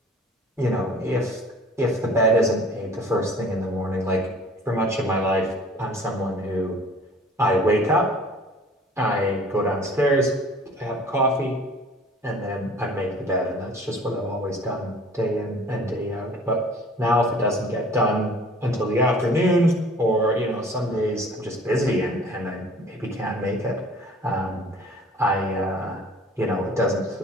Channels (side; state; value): both; normal; correlation 0.48